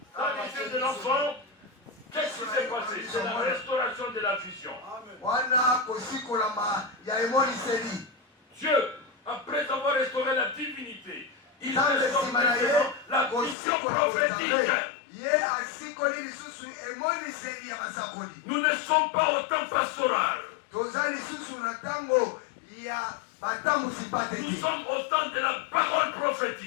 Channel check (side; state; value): right; drops out; at 13.6 s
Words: dans les yeux de l'enfant, qu'est-ce qui s'est passé? C'est la restauration de la vision. wana kosikolama ya emoniseli. Dieu, après avoir restauré la divinité, il nzambe restaure nsima na ye maintenant la vision kosikola prophétique. kozambe, ye asikoli lisusu emoniseli ya basakoli. Nous ne sommes pas au temps pastoral. toza lisusu na ntango ya batambusi Nous pateki, sommes au temps de la parole